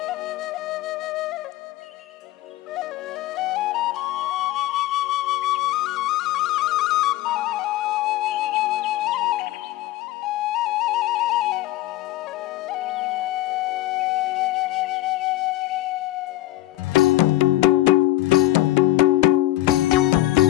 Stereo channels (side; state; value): right; quieter; 16.2 dB